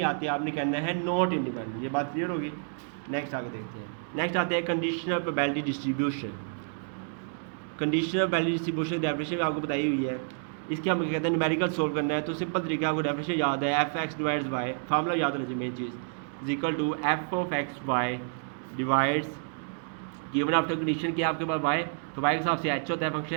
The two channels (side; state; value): left; silent; digital silence